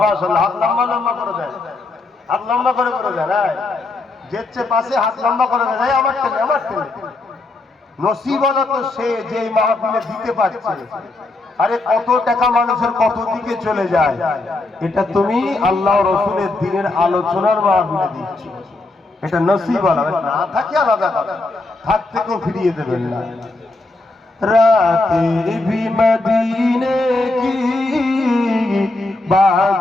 हाथ लंबा लंबा করে দেন, হাত লম্বা করে দেন। যেচ্ছে পাশে হাত লম্বা করে দেন, আমার টেনে নসিব হলো তো সে যে মাহফিলে দিতে পারছে। আরে কত টাকা মানুষের কত দিকে চলে যায়, এটা তুমি আল্লাহ রসুলের দিনের আলোচনার মাহফিলে দিচ্ছ, এটা নসিব হলো। না থাকে আলাদা কথা, থাকতে কেউ ফিরিয়ে দেবেন না। রাতে ভি মদিনে কি,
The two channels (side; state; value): right; quieter; 3.0 dB